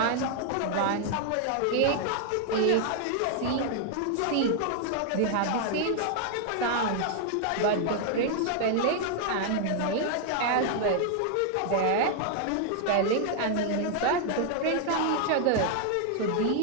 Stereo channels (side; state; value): both; different; correlation 0.00